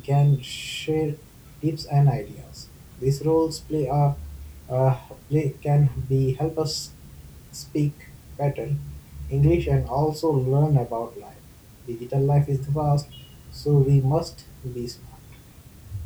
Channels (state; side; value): identical; both; correlation 1.00